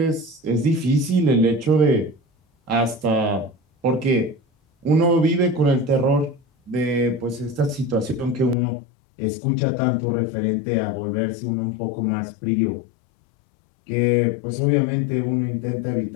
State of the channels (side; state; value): right; drops out; at 8.6 s